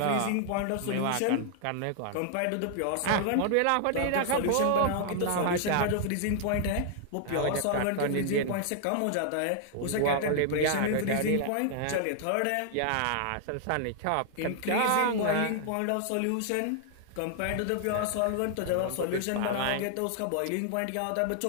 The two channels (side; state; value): both; different; correlation 0.00